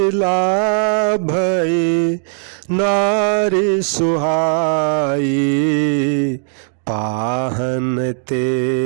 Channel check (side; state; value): left; silent; digital silence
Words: भई नारी सुहाई, पाहन